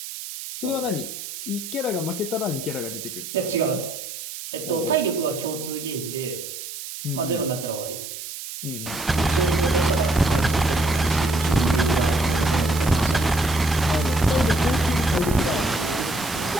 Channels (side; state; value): right; noise; hiss, 9 dB below the sound